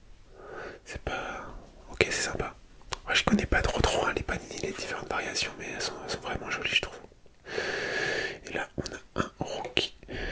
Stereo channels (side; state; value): both; identical; correlation 1.00